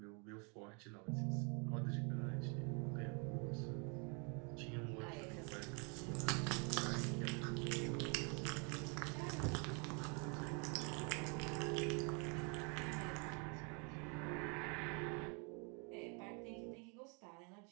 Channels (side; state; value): left; quieter; 34.9 dB